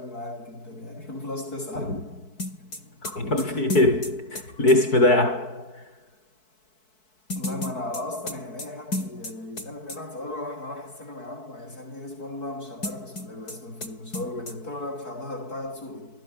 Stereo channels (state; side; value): late; right; 4.6 ms